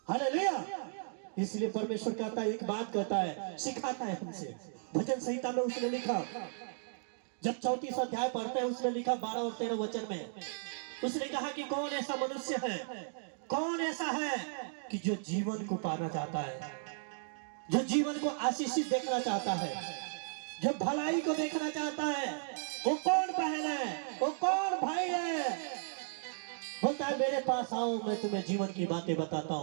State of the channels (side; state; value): left; silent; digital silence